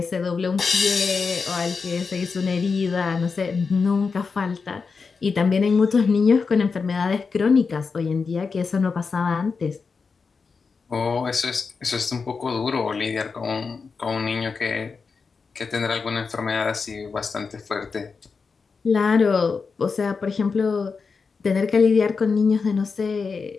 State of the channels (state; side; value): quieter; right; 5.0 dB